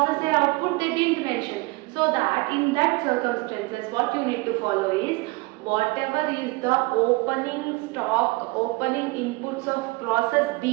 A output they didn't mention. So that in that circumstances what you need to follow is whatever is the opening stock, opening inputs of process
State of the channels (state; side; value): quieter; left; 24.7 dB